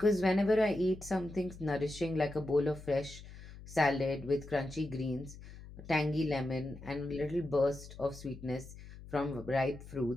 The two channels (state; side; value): noise; left; hum, 16 dB below the sound